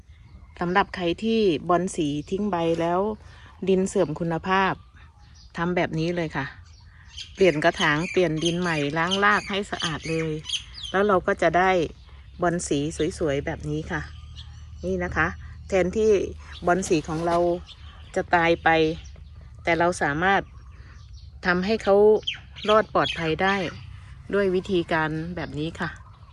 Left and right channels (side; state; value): both; identical; correlation 1.00